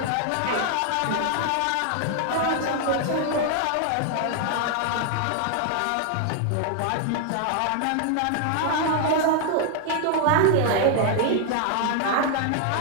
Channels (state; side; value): different; both; correlation 0.00